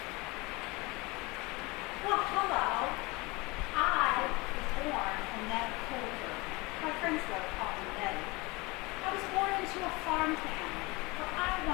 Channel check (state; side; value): quieter; right; 24.5 dB